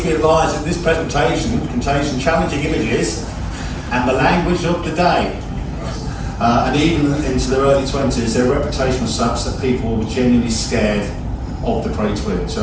be advised that this presentation contains some challenging images and the language of the day. And even into their early 20s, their reputation was such that people were genuinely scared of the Cray twins. So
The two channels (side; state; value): both; identical; correlation 1.00